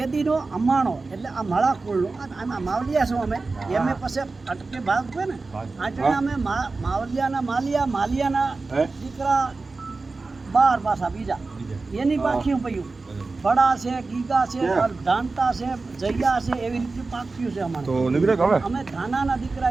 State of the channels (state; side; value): quieter; left; 3.8 dB